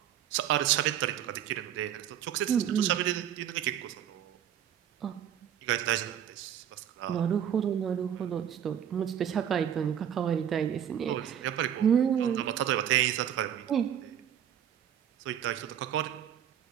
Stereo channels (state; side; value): quieter; left; 9.7 dB